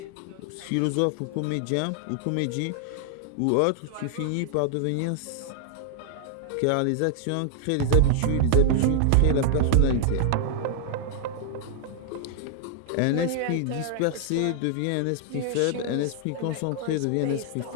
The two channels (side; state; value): both; different; correlation 0.00